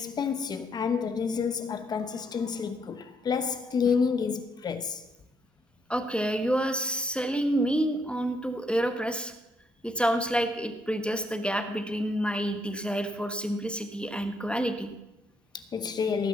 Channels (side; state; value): both; normal; correlation 0.74